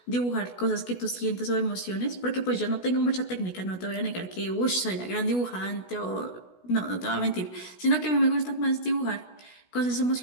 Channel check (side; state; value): right; late; 16 ms